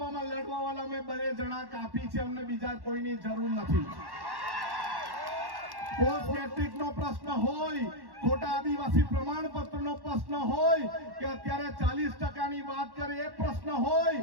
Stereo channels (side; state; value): left; late; 1.1 ms